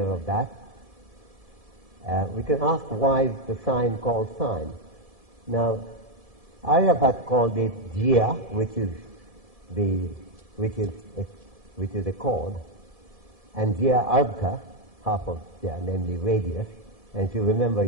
of that. We can ask why is the sign called sine. Now, Aryabhat called it jia, which is a chord, and jia ardha, half of jia, namely radius. And if you remember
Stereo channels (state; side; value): late; left; 1.7 ms